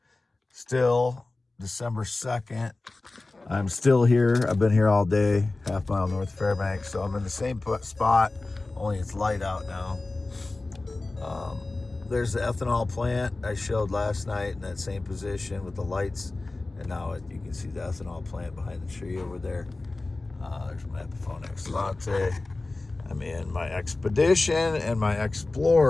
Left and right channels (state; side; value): quieter; right; 3.2 dB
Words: still December 2nd. I'm still here. I've been here all day, half mile north of Fairbanks. So I'm in the same spot, only it's light out now. There's the ethanol plant I showed last night in that same position with the lights. And now you can see the ethanol plant behind the tree over there. There's my Epiphone Excellente. I'm in my Expedition and my